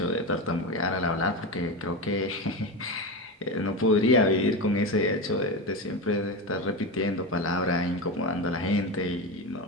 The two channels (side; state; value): both; normal; correlation 0.19